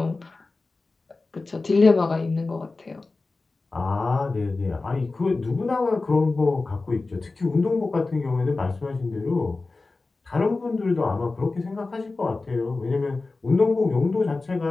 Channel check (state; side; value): quieter; right; 3.6 dB